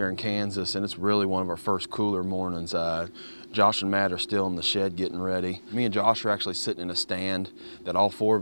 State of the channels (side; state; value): both; inverted; correlation -1.00